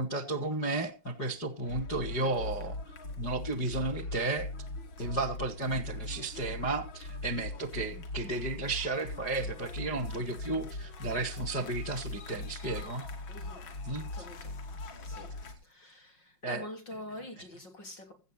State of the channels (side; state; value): right; late; 5.5 ms